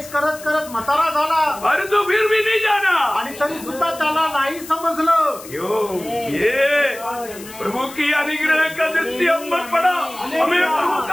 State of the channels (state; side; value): noise; left; hiss, 16 dB below the sound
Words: करत करत म्हातारा झाला, अरे तो फिर भी नहीं जाना, आणि तरी सुद्धा त्याला नाही समजलं। ये प्रभु की अनुग्रह का दृष्टि हम पर पड़ा, हमें प्रभु